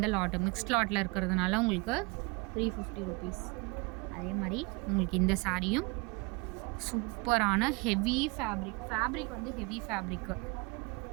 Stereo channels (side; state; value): left; quieter; 28.1 dB